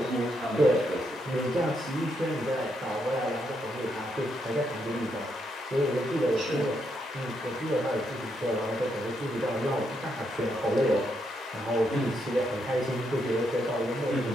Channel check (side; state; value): both; normal; correlation 0.78